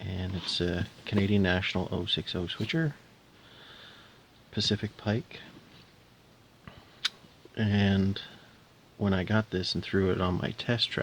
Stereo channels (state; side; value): identical; both; correlation 1.00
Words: it's a Canadian National 060 switcher, Pacific Pike, and when I got this and threw it on my test